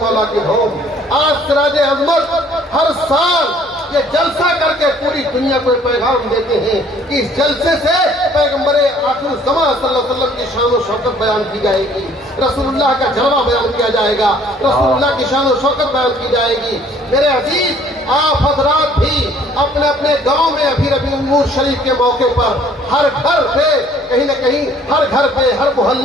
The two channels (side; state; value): both; normal; correlation 0.58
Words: کی دھوم۔ آج سراج عظمت ہر سال یہ جلسہ کر کے پوری دنیا کو پیغام دیتے ہیں کہ اس جلسے سے پیغمبر آخر الزمان صلی اللہ علیہ وسلم کی شان و شوکت بیان کی جائے گی، رسول اللہ کا جلوہ بیان کیا جائے گا، رسول اللہ کی شان و شوکت بیان کی جائے گی۔ میرے عزیز، آپ حضرات بھی اپنے اپنے گاؤں میں ابھی ربیع النور شریف کے موقع پر ہر گھر پہ کہیں نہ کہیں، ہر گھر پہ ہر